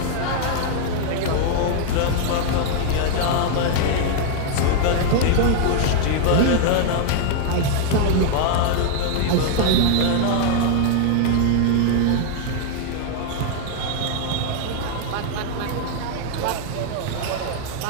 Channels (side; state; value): both; different; correlation 0.00